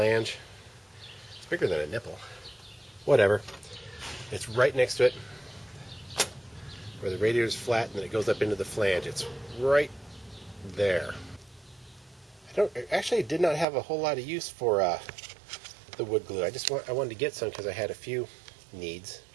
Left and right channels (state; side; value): drops out; left; at 13.7 s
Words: It's bigger than a nipple. Whatever. It's right next to it, where the radiator's flat and then it goes up into the flange. It's right there. I actually did not have a whole lot of use for the wood glue. I wanted to get some because I had a few needs.